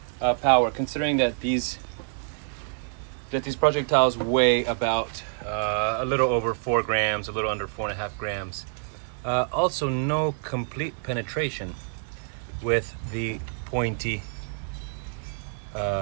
power, considering that these projectiles weigh about a little over 4 grams, a little under 4.5 grams. Also, no complete penetration with the pointy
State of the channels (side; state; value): left; silent; 60 dB below the other